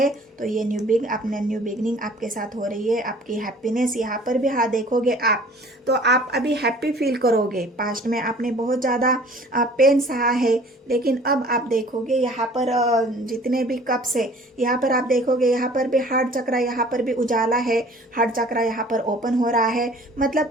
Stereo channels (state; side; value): normal; both; correlation 0.50